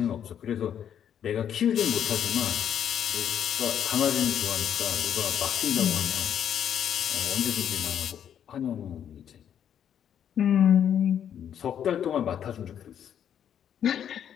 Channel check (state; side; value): quieter; right; 9.2 dB